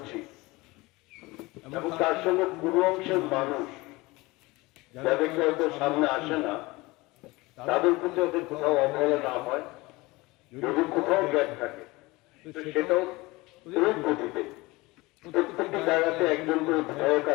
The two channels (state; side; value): quieter; right; 22.1 dB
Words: এবং তার সঙ্গে পুরো অংশের মানুষ যাদেরকে হয়তো সামনে আসে না, তাদের প্রতি ওদের কোথাও অবহেলা না হয়, যদি কোথাও গ্যাপ থাকে তো সেটাও তুরন্ত গতিতে প্রত্যেকটি জায়গাতে একজন করে বিধায়ক